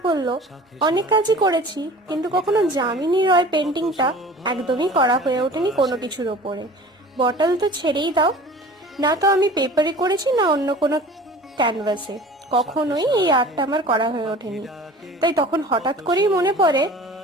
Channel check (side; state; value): both; normal; correlation 0.42